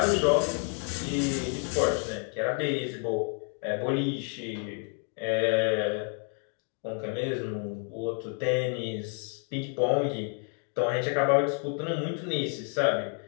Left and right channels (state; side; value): quieter; right; 38.4 dB